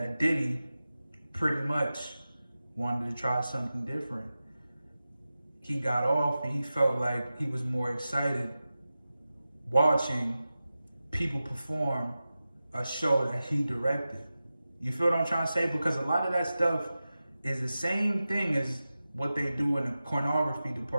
Diddy pretty much wanted to try something different. He got off and he felt like he was more excited watching people perform a show that he directed. You feel what I'm trying to say? Because a lot of that stuff is the same thing as what they do in the pornography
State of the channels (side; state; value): both; inverted; correlation -0.94